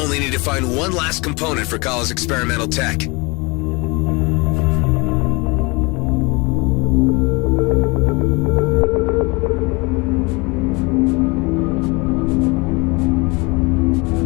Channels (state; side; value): quieter; right; 27.2 dB